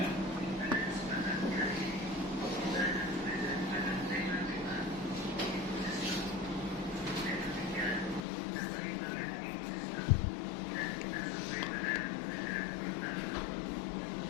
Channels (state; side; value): drops out; right; at 8.2 s